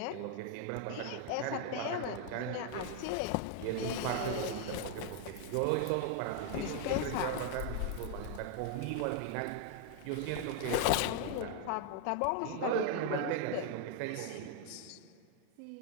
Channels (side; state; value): both; different; correlation 0.00